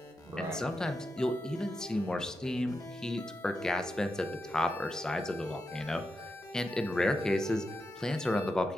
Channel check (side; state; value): both; normal; correlation 0.87